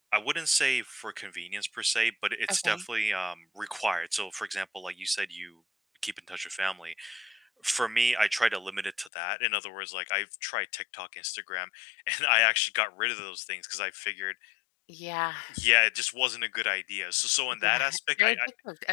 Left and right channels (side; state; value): right; drops out; at 9.1 s